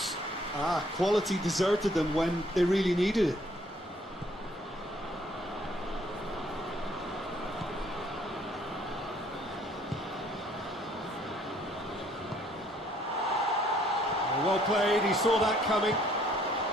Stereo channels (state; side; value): normal; both; correlation 0.63